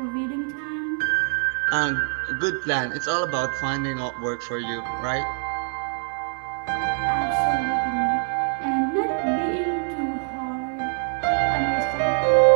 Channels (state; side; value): silent; left; digital silence